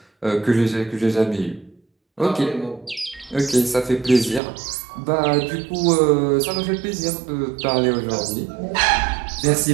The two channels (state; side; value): drops out; left; at 4.4 s